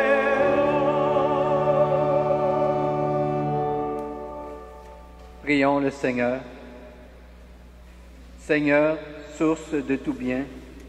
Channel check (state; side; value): identical; both; correlation 1.00